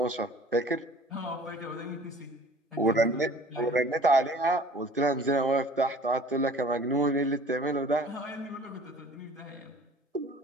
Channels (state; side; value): normal; both; correlation 0.48